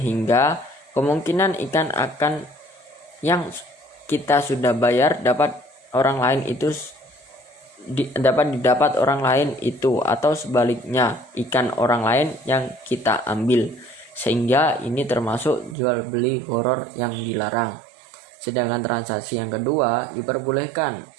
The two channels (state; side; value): drops out; left; at 15.8 s